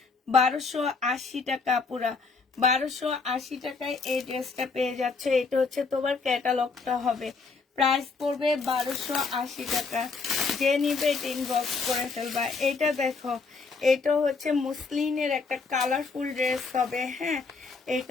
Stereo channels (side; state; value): right; quieter; 4.5 dB